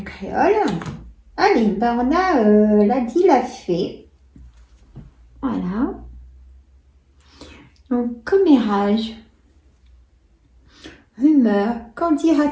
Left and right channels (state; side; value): identical; both; correlation 1.00